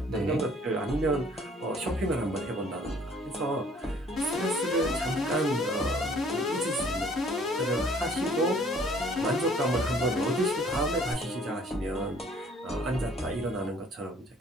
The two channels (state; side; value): normal; both; correlation 0.57